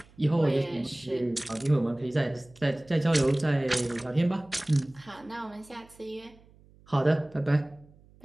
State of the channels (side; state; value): right; noise; hum, 27 dB below the sound